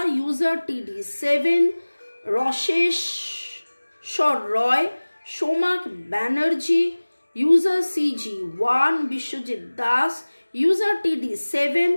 user TD7, Rasheswar Roy, Somak Banerjee, user CG1, Biswajit Das, user TD7,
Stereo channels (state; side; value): inverted; both; correlation -1.00